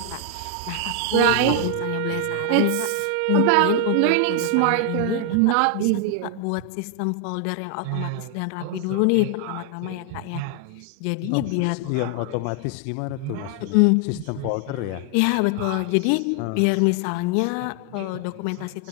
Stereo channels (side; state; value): both; different; correlation 0.00